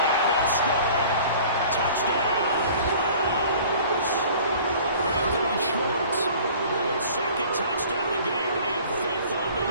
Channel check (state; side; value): inverted; both; correlation -0.48